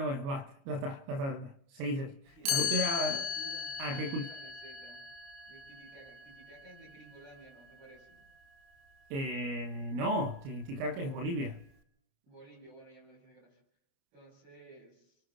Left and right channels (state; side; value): late; left; 29 ms